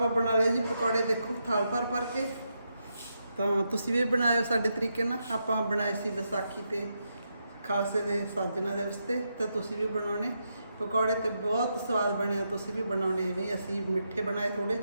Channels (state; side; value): inverted; both; correlation -0.83